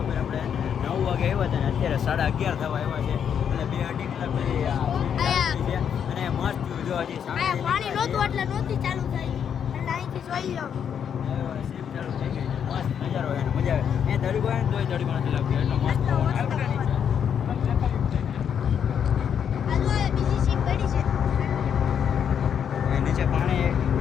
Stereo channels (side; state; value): right; quieter; 8.1 dB